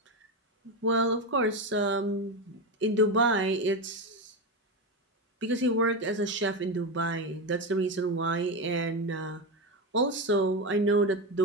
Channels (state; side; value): normal; both; correlation 0.14